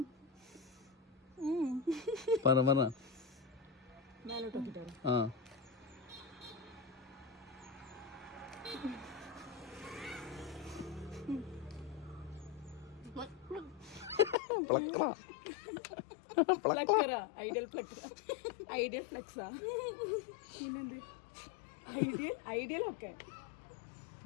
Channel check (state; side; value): drops out; right; at 14.4 s